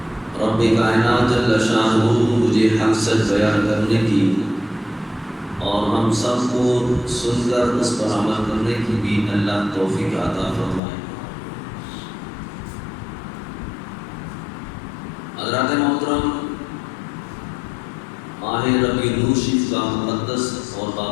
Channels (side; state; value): right; drops out; at 10.8 s